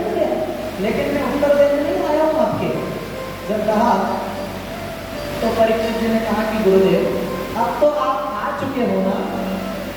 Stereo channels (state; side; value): identical; both; correlation 1.00